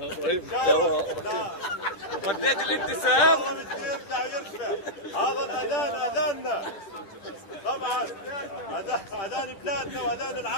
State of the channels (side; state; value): right; late; 9.7 ms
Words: شاء الله. لا وديت الابتسام. والله بده يرجع ويرفع. هذا الاذان اذاننا. طبعا اذان بلادنا واذان